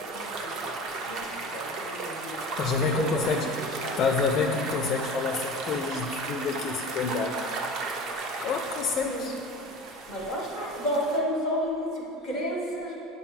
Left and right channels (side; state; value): both; normal; correlation 0.35